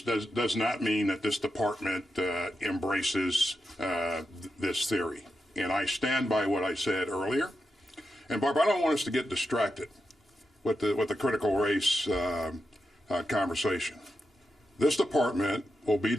does not mean that this department embraces this theory. And I stand by what I said earlier. And Barbara, I don't want us to get distracted with the critical race conversation. This department will be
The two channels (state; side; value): normal; both; correlation 0.87